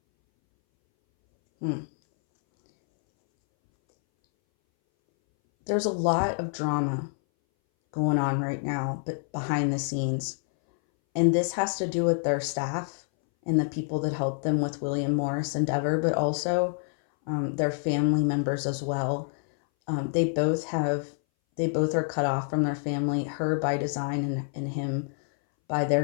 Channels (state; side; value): silent; right; 60 dB below the other